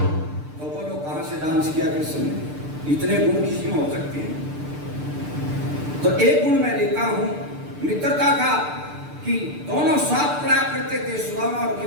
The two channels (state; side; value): late; left; 6.7 ms